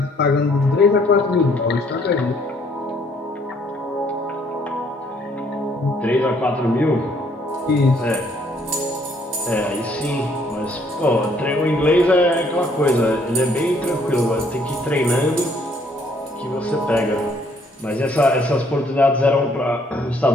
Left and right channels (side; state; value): both; normal; correlation 0.65